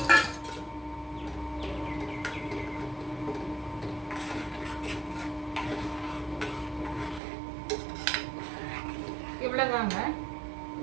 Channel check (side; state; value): left; drops out; at 7.2 s